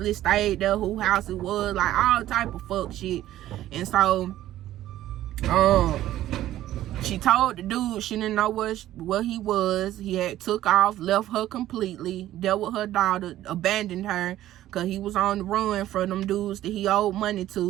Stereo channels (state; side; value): quieter; left; 13.6 dB